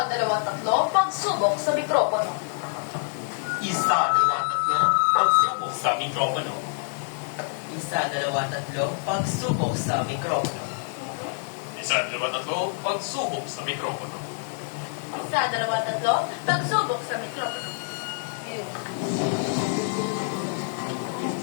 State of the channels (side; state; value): right; silent; 61 dB below the other